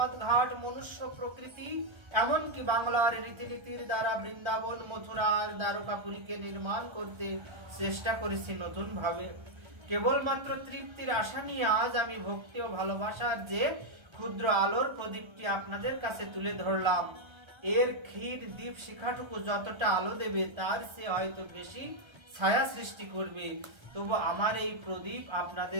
ঘাট, মনুষ্য প্রকৃতি, এমনকি বাংলার রীতিনীতির দ্বারা বৃন্দাবন, মথুরা আর দ্বারকাপুরীকে নির্মাণ করতে চেষ্টা করেছি নতুন ভাবে। কেবলমাত্র তৃপ্তির আশা নিয়ে আজ আমি ভক্তি ও ভালোবাসার যে ক্ষুদ্র আলোর প্রদীপটি আপনাদের কাছে তুলে ধরলাম। এর ক্ষীর দীপ শিখাটুকু যতটা আলো দেবে তার সে হয়তো বেশি ছায়া সৃষ্টি করবে। তবু আমার এই প্রদীপ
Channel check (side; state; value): left; late; 1.3 ms